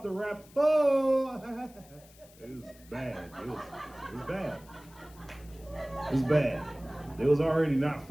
the rap. Oh, it was bad. It was bad. It was bad. They was already not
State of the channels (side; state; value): left; noise; hiss, 25 dB below the sound